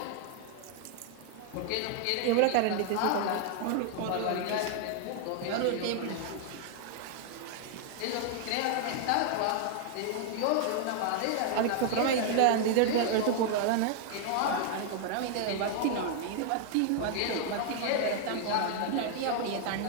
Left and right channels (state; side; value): different; both; correlation 0.00